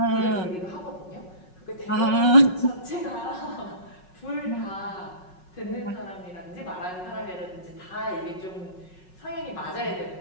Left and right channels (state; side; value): late; right; 5.4 ms